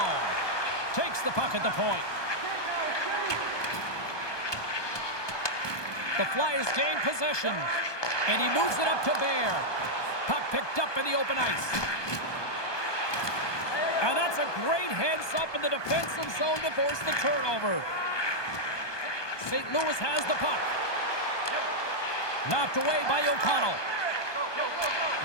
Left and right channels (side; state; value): right; late; 1.2 ms